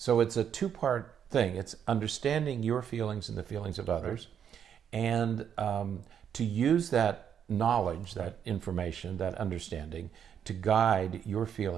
it's a two-part thing. It's understanding your feelings and the feelings of others, and to use that knowledge, that information, that understanding to guide your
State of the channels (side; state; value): left; quieter; 8.5 dB